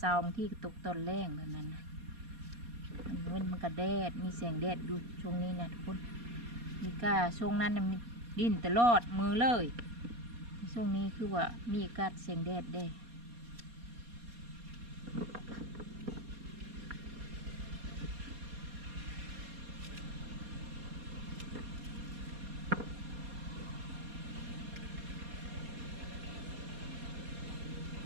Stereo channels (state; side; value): late; left; 4.2 ms